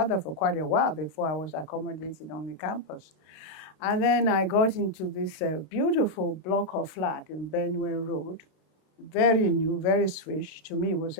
for quite a while before I was accommodated on the campus. And then I got into this beautiful block of flat in Benue Road, very new, very swish. To me, it was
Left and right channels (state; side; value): late; right; 32 ms